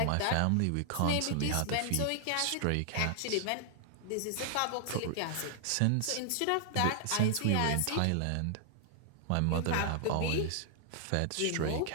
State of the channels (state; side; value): different; both; correlation -0.01